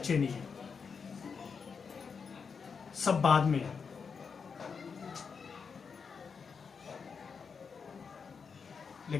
नहीं है, सब बाद में है।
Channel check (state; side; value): quieter; right; 5.7 dB